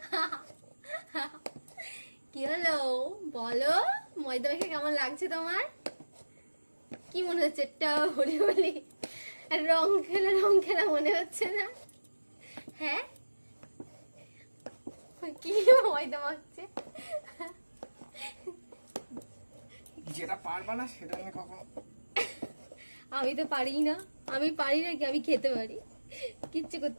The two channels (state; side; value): inverted; both; correlation -1.00